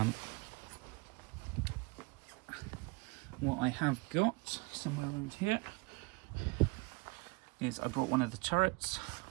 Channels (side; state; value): left; quieter; 27.2 dB